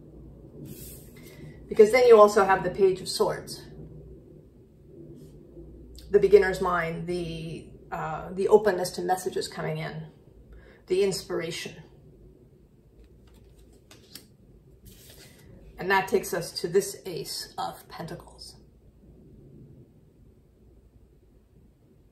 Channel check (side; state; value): both; identical; correlation 1.00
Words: Because then you also have the Page of Swords. The beginner's mind, the openness to messages coming in, the inspiration. And that takes us to this Ace of Pentacles.